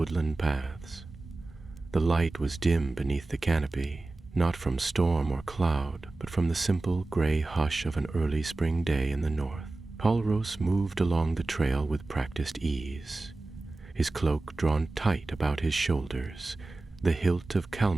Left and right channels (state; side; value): quieter; left; 3.2 dB